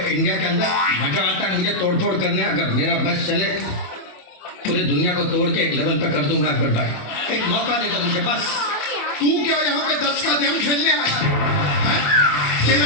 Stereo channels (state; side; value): late; right; 28 ms